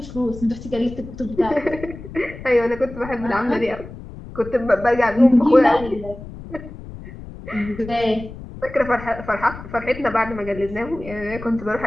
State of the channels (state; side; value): noise; left; rumble, 13 dB below the sound